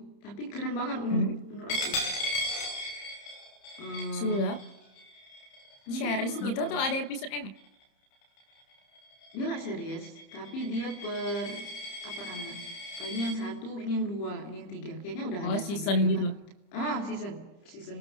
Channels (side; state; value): right; late; 30 ms